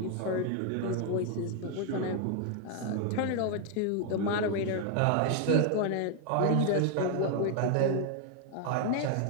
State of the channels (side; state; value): both; different; correlation 0.01